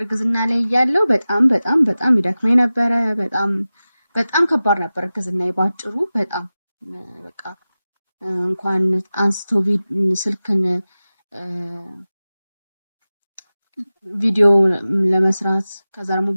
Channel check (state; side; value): inverted; both; correlation -0.96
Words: ላይ እያለሁ በጣም ይደክመኝ ነበረ። በጣም ከባድ ነበር እርግዝና ባጭሩ። በጣም በቃ እንኳን አንስቶ ስልክን ቪዲዮ ለመስራት ከዛ ደግሞ